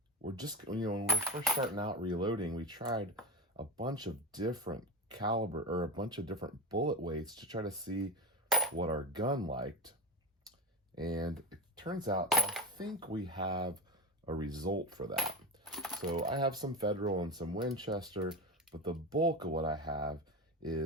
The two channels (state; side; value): normal; both; correlation 0.21